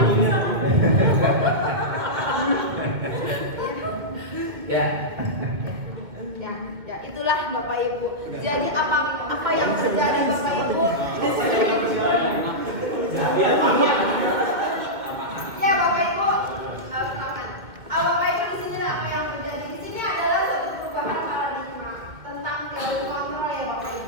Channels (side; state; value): left; late; 2.2 ms